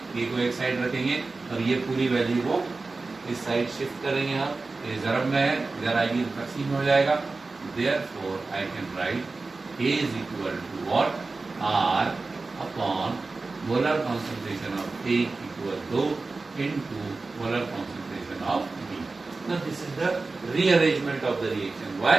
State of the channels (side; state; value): left; quieter; 3.7 dB